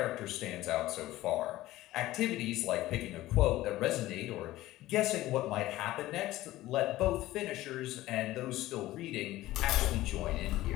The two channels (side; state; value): right; quieter; 16.3 dB